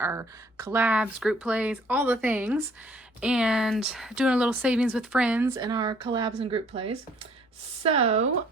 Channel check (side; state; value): both; normal; correlation 0.60